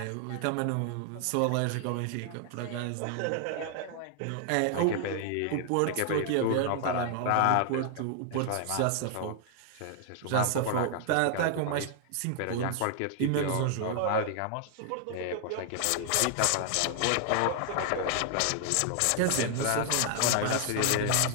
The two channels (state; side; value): different; both; correlation 0.00